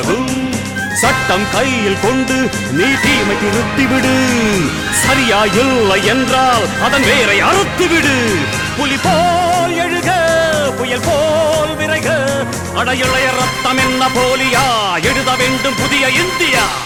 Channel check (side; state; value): right; noise; hum, 26 dB below the sound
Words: சட்டம் கையில் கொண்டு நீ தீமை திருத்திவிடு. சரியா இல்லை என்றால் அதன் வேரை அறுத்துவிடு. புலி போல் எழுக புயல் போல் விரைக. அடையுளைய ரத்தம் என்ன போலியா எழுத வேண்டும் புதிய இந்தியா.